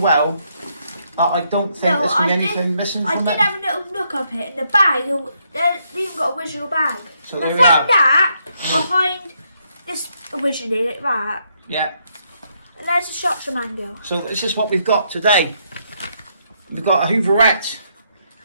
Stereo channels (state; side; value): inverted; both; correlation -0.75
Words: that I don't think there's been anything missing from it. I did have a little look up it in the bag. They even got a original bag. So I found that behind this originally, like that. Yeah. And there's the shots of mango. So this is what we've got today. We've got a Hooverette.